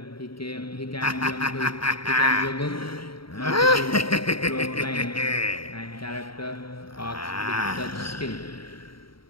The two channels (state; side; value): late; right; 0.74 ms